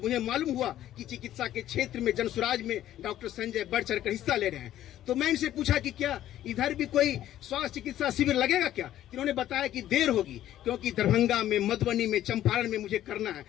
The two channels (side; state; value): right; quieter; 12.6 dB